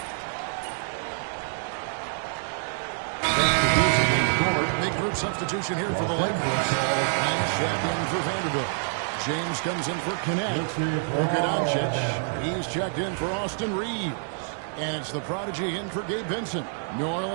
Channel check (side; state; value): left; silent; digital silence